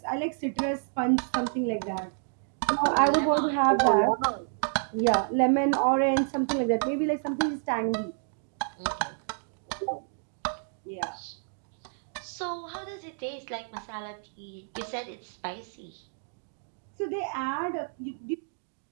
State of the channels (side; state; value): left; silent; digital silence